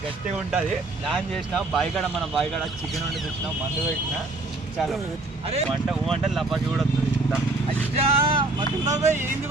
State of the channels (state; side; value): quieter; left; 3.0 dB